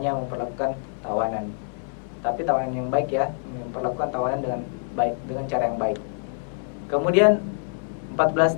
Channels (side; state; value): right; silent; 61 dB below the other